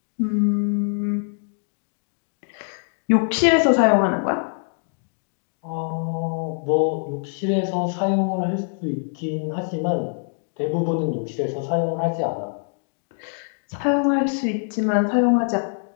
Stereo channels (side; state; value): right; silent; 63 dB below the other